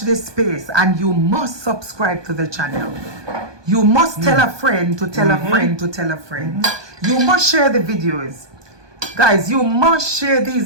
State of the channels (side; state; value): left; late; 1.2 ms